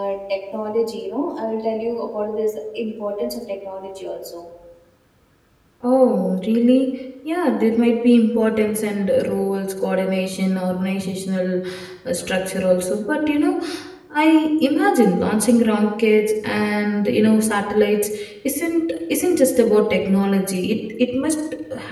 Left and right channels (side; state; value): both; identical; correlation 1.00